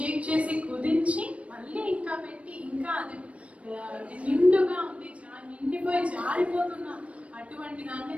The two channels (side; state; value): left; late; 0.064 ms